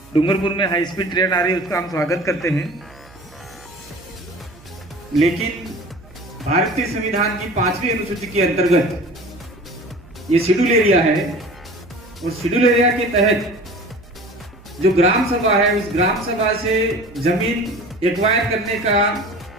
डूंगरपुर में हाई स्पीड ट्रेन आ रही है, उसका हम स्वागत करते हैं, लेकिन भारतीय संविधान की 5वीं अनुसूची के अंतर्गत ये शेड्यूल एरिया है, और शेड्यूल एरिया के तहत जो ग्राम सभा है, उस ग्राम सभा से जमीन एक्वायर करने का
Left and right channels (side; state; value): right; noise; hum, 24 dB below the sound